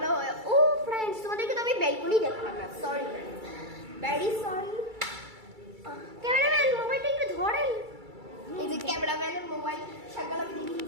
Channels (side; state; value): left; late; 2.3 ms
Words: হয়। ও ফ্রেন্ডস তোমাদেরকে তো আমি ব্যালকনি দেখালাম না, sorry friends, very sorry. Cameraman মোবাইলটা একটু ধরেন। এই যে ক্যামেরাম্যানের মোবাইল সকালে আমি